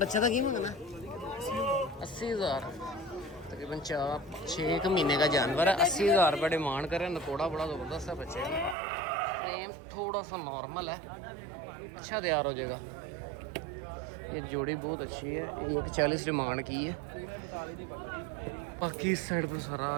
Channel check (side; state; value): left; drops out; at 8.8 s